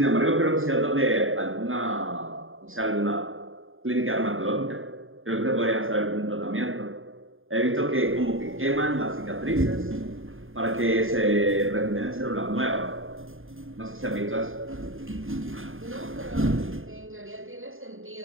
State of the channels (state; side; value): late; left; 0.59 ms